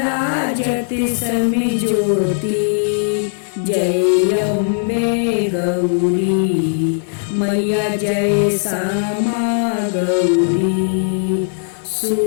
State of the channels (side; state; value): right; silent; 55 dB below the other